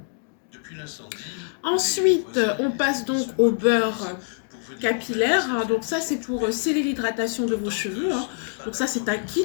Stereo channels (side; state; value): right; silent; digital silence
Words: Depuis l'incendie. Ensuite, on passe donc au beurre capillaire. Donc ça, c'est pour sceller l'hydratation de vos cheveux. Donc ça, c'est un